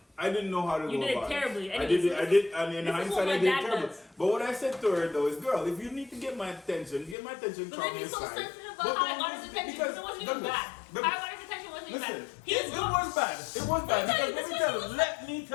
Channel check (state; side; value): drops out; right; at 7.2 s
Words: I didn't know how to go about it. You did it terribly. I did, and in hindsight, I did it terribly. But what I said to her though is, girl, if you need to get my attention, call me aside. But then he's so sensitive about how I got his attention because it wasn't even bad. How I got his attention wasn't even bad. It was bad. It was bad. Because let me